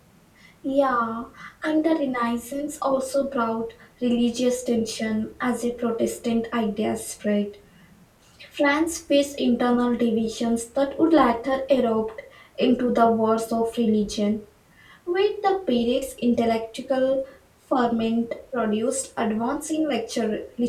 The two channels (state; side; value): identical; both; correlation 1.00